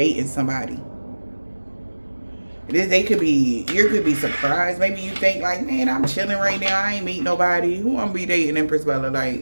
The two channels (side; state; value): both; inverted; correlation -1.00